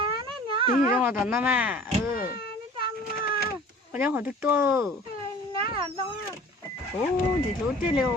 Tí gì trong đó nó mà, ừ. Có cháu hỏi thức tôi. Ồ, gì lú chết liều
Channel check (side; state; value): both; normal; correlation 0.46